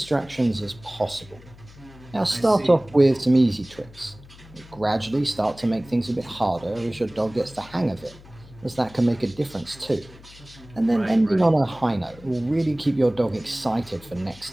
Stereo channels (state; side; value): noise; left; hum, 21 dB below the sound